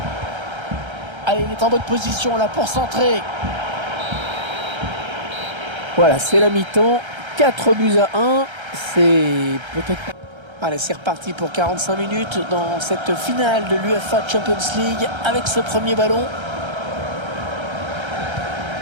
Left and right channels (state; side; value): late; left; 1.3 ms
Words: Allez, il est en bonne position là pour centrer. Voilà, c'est la mi-temps. 4-1. C'est peut-être... Allez, c'est reparti pour 45 minutes dans cette finale de l'UEFA Champions League avec ce premier ballon.